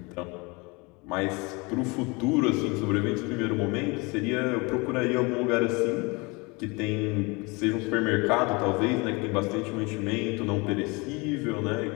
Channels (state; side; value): quieter; right; 27.2 dB